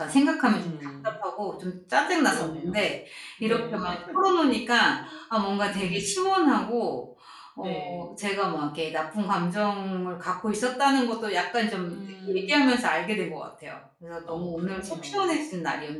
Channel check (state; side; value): identical; both; correlation 1.00